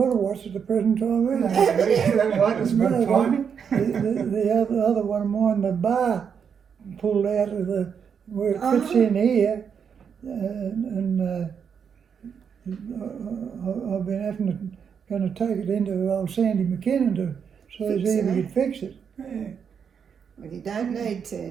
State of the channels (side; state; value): left; quieter; 7.0 dB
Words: a watch at the present time either. That right, it's good timing. The other one of mine, the bar pulled out of the where it fits in here, and I've been going to take it into old Sandy McKinnon to so Fix he it, could fix it. Yeah. Well, you don't need to